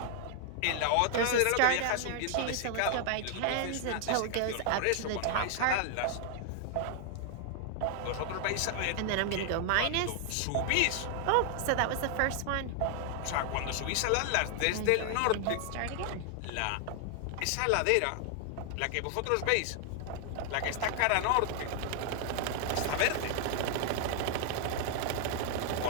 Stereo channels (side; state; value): both; different; correlation 0.00